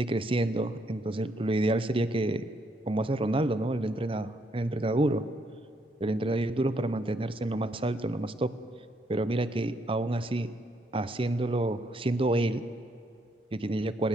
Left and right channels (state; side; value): normal; both; correlation 0.73